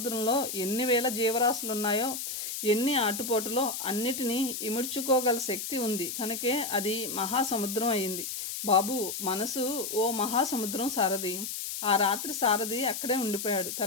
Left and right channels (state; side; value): noise; left; hiss, 5 dB below the sound